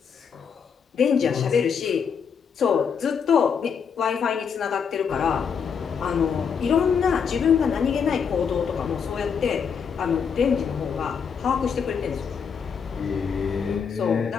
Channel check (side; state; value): right; quieter; 6.7 dB